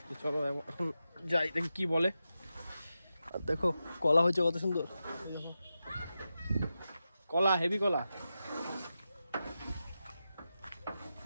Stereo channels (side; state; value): both; inverted; correlation -0.91